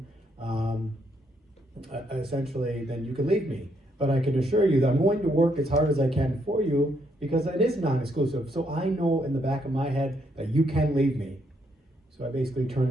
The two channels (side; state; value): both; normal; correlation 0.74